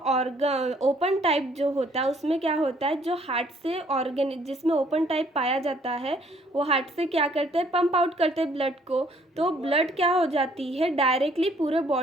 ओपन टाइप जो होता है उसमें क्या होता है, जो हार्ट से ऑर्गन जिसमें ओपन टाइप पाया जाता है वो हार्ट से क्या करते हैं, पंप आउट करते हैं ब्लड को। तो ब्लड क्या हो जाती है, डायरेक्टली पूरे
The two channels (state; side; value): normal; both; correlation 0.63